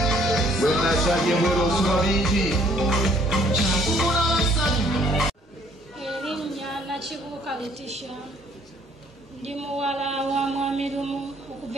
When I said you were also Elinya Nachibuka Letitia. Ndi muwala wa mwami Lumu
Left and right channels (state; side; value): normal; both; correlation 0.61